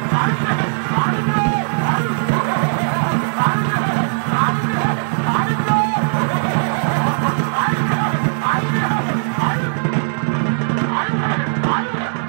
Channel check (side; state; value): left; silent; digital silence